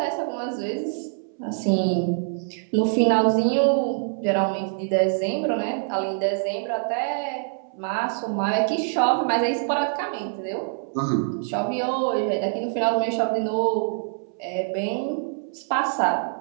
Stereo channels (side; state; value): left; silent; 62 dB below the other